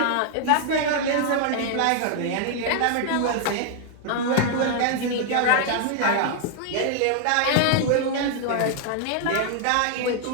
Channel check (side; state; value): both; different; correlation 0.00